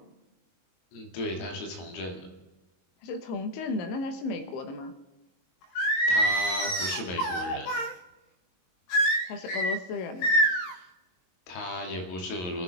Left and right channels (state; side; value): late; right; 22 ms